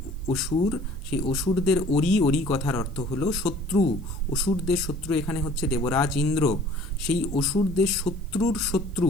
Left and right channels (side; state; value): right; noise; hiss, 30 dB below the sound